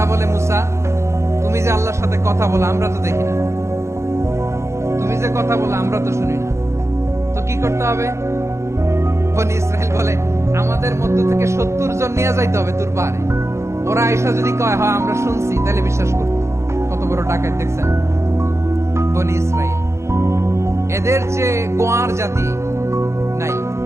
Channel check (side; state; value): left; late; 0.14 ms